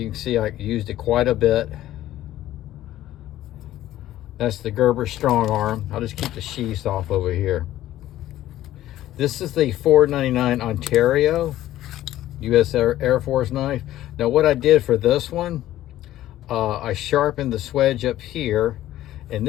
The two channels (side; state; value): right; quieter; 13.9 dB